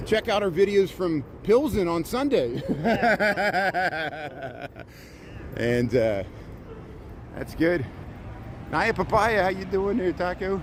Check out our videos from Pilsen on Sunday. And that's good. Naya Papaya, how you doing there, Taco?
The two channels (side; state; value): both; identical; correlation 1.00